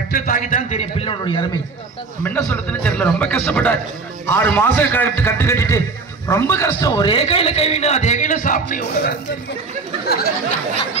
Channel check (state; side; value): quieter; left; 4.2 dB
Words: தாக்கி தான் தெரியும் பிள்ளையோடைய அருமை. நம்ம என்ன சொல்றதுன்னு தெரியல. ரொம்ப கஷ்டப்பட்டார். 6 மாசம் கட்டு கட்டிட்டு ரொம்ப கஷ்டம். ஒரே கையில கை வேணும், அதே கையில சாப்பிட்டு